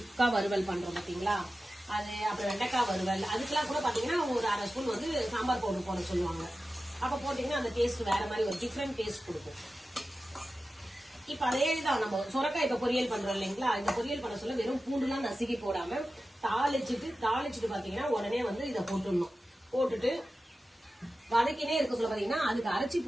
வறுவல் பண்றோம் பாத்தீங்களா, அது அப்புறம் வெண்டைக்காய் வறுவல், அதுக்கெல்லாம் கூட பாத்தீங்கன்னா அவங்க ஒரு 1/2 ஸ்பூன் வந்து சாம்பார் பவுடர் போட சொல்லுவாங்க. அப்ப போட்டீங்கன்னா அந்த டேஸ்ட் வேற மாதிரி ஒரு டிஃப்ரெண்ட் டேஸ்ட் கொடுக்கும். இப்ப அதேதான் நம்ம சுரக்காய் இப்ப பொரியல் பண்றோம் இல்லைங்களா, இந்த பொரியல் பண்ண சொல்ல வெறும் பூண்டுலாம் நசுக்கி போடாம தாளிச்சுட்டு பாத்தீங்கன்னா உடனே வந்து இதை போட்டுடணும். போட்டுட்டு வதக்கினே இருக்க சொல்ல பாத்தீங்கன்னா அதுக்கு அரைச்சி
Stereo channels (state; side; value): normal; both; correlation 0.94